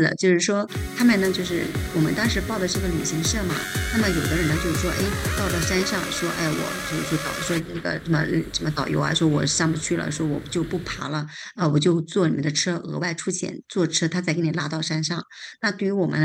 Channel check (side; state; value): both; identical; correlation 1.00